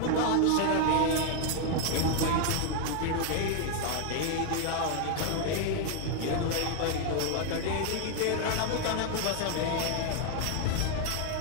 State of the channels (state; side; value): different; both; correlation 0.00